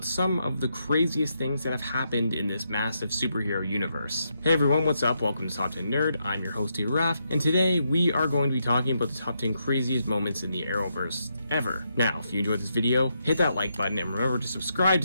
some of the craziest things that have happened in this massive superhero universe. Hey everyone, what's up? Welcome to Top 10 Nerd. I'm your host, Raf, and today we are going to be talking about the top 10 craziest moments in the Arrowverse ever. Now, if you enjoyed this video, hit that like button and remember to subscribe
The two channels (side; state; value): both; inverted; correlation -0.80